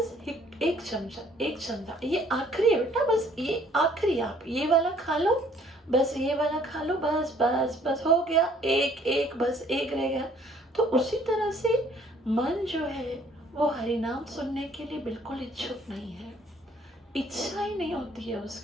एक चमचा, ये आखिरी है बेटा, बस ये आखिरी, आप ये वाला खा लो, बस ये वाला खा लो, बस बस बस हो गया, एक बस एक रह गया। तो उसी तरह से मन जो है वो हरिनाम सुनने के लिए बिल्कुल इच्छुक नहीं है। इच्छा ही नहीं होती है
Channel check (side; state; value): both; normal; correlation 0.60